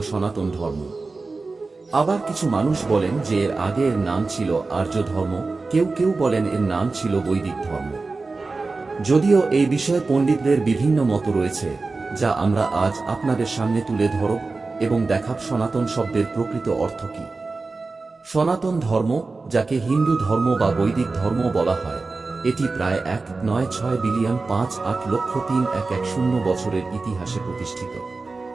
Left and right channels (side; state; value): left; quieter; 3.8 dB